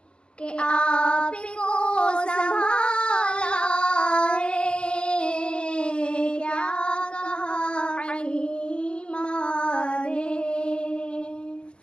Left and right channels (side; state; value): right; late; 0.054 ms